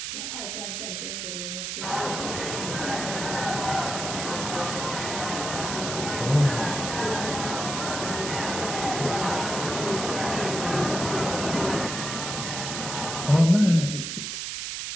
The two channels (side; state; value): right; noise; hiss, 4 dB below the sound